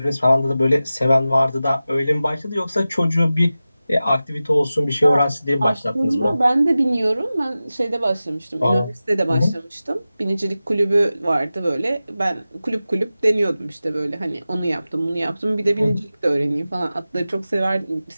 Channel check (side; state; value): both; inverted; correlation -0.95